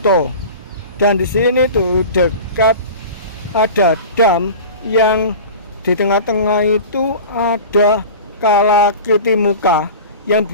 Dan di sini tuh dekat ada dam yang di tengah-tengah itu ada kalakiti muka yang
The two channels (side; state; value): both; inverted; correlation -0.35